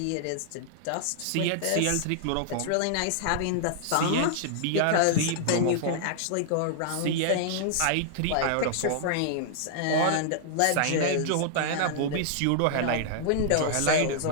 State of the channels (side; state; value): both; different; correlation -0.01